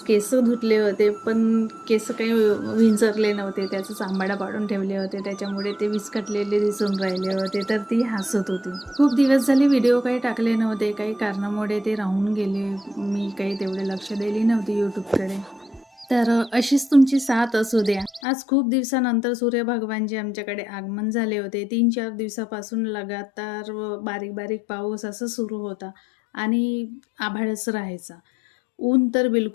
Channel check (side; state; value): right; drops out; at 18.2 s